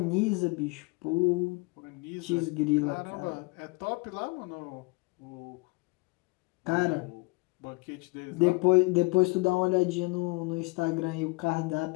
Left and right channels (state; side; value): quieter; right; 26.8 dB